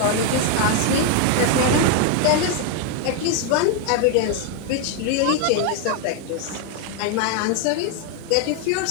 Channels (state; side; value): different; both; correlation 0.01